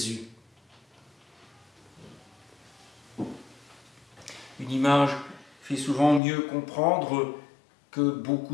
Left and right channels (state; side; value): drops out; right; at 6.2 s